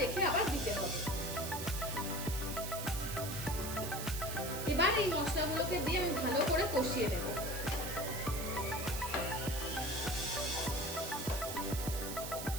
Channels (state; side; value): noise; right; hiss, 7 dB below the sound